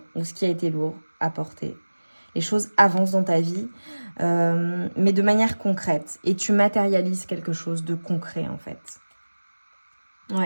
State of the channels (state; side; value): inverted; both; correlation -1.00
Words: ou ce qui a été lourd à porter, les choses avancent dans ta vie, mais de manière concrète. Et tu matérialises quelque chose de concret en fait.